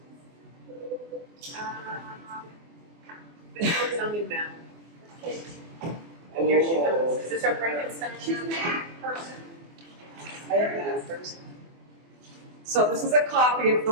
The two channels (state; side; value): late; left; 24 ms